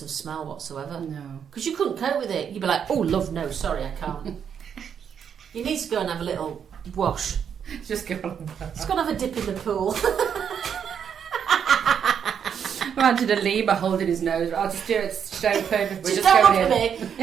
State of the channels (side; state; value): left; quieter; 7.9 dB